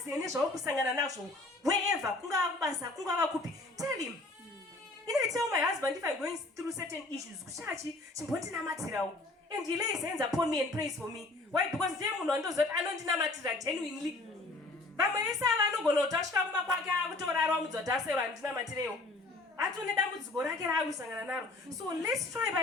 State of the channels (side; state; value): right; quieter; 3.0 dB